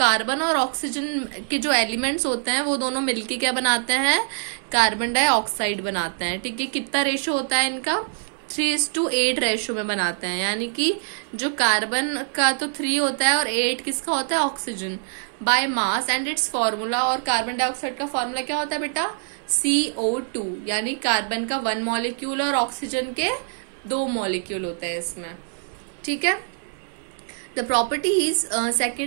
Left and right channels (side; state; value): left; silent; digital silence